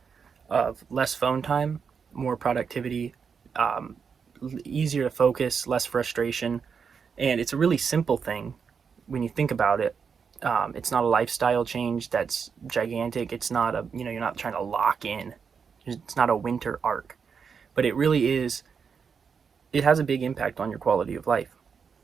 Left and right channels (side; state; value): left; quieter; 6.2 dB